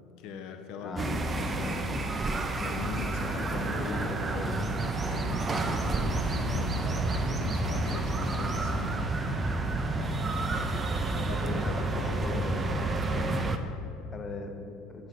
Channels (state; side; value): normal; both; correlation 0.67